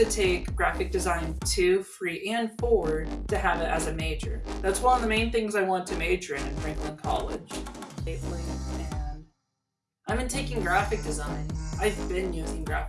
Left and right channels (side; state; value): both; identical; correlation 1.00